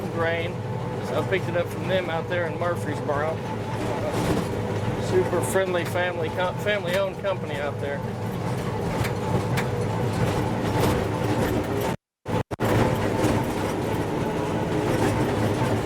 grain. So I picked it up from them out there in Murfreesboro. Super friendly family-owned company out there.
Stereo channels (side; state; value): both; identical; correlation 1.00